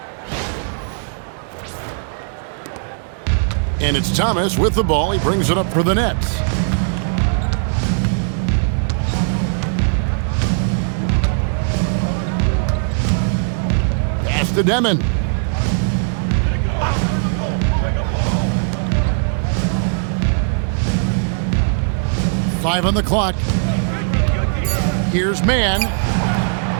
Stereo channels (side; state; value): left; silent; digital silence